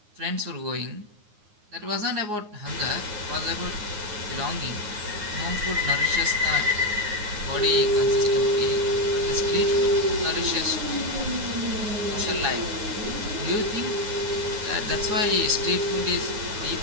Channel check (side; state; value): left; late; 9.6 ms